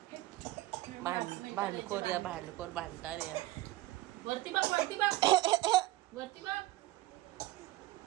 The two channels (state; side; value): quieter; left; 17.6 dB